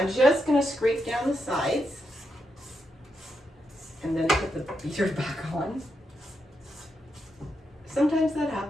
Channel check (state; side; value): normal; both; correlation 0.83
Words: just going to scrape down the sides and then put the beater back on. Sometimes that